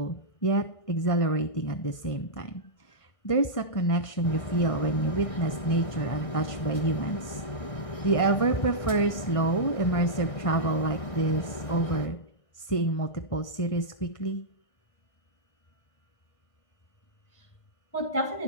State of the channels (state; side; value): late; right; 1.5 ms